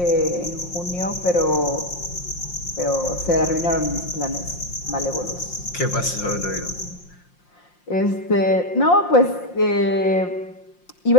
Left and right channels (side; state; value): right; late; 5.7 ms